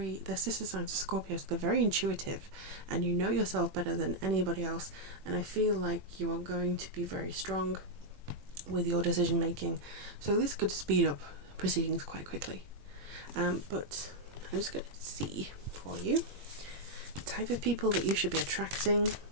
sister signs of Scorpio, so they're very intuitive, and you know yourself better than anybody else. And I feel like you are going to be very strong with your decision making. So this could speed up proceedings quite quickly. But I'm just going to see for you the type of people that you should be attracting,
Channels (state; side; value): late; left; 21 ms